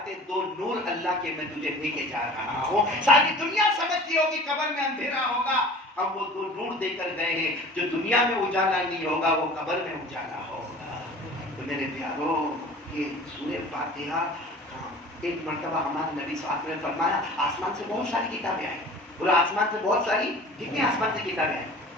2 نور اللہ کے میں تجھے دے کے جا رہا ہوں. ساری دنیا سمجھتی ہوگی قبر میں اندھیرا ہوگا, ہم وہ 2 نور دے کر گئے ہیں جو دنیا میں اجالا نہیں ہوگا وہ قبر میں اجالا ہوگا. تو میرے پیارو یہ سورہ فاتحہ ایک مرتبہ ہمارے نبی صلی اللہ علیہ وسلم نے فرمایا آسمان سے بہت ساری کتابیں آئیں. بولو آسمان سے بہت ساری, کتنی آسمان سے کتابیں آئیں؟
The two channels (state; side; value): normal; both; correlation 0.43